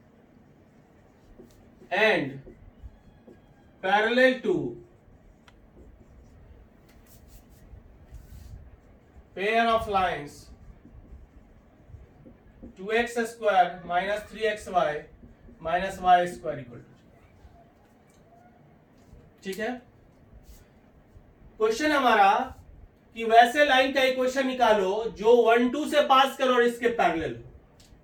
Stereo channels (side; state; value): both; identical; correlation 1.00